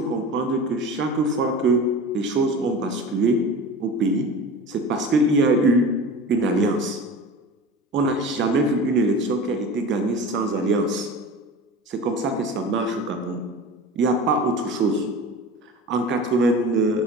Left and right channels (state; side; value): normal; both; correlation 0.34